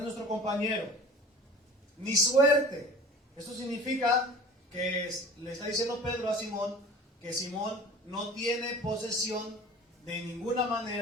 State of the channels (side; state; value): both; normal; correlation 0.42